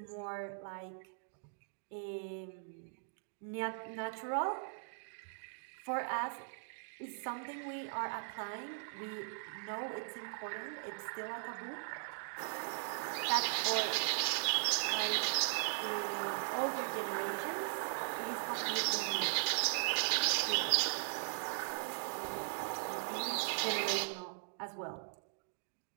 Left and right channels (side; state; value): left; silent; digital silence